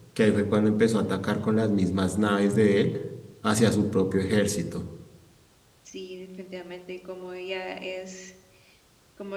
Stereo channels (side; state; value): both; identical; correlation 1.00